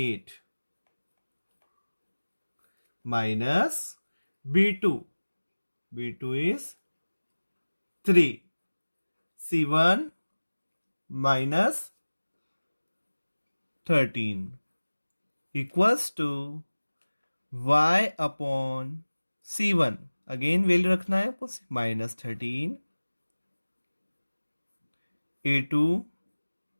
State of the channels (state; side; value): inverted; both; correlation -1.00